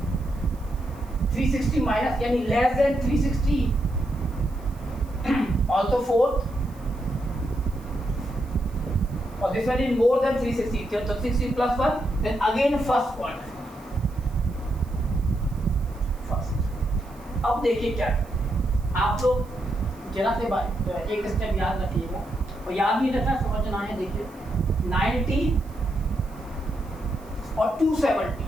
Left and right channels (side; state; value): right; noise; hiss, 27 dB below the sound